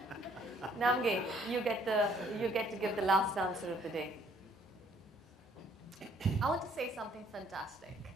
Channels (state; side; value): normal; both; correlation 0.62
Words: Namge, you get to give the last answer of the day. I want to say something fantastic,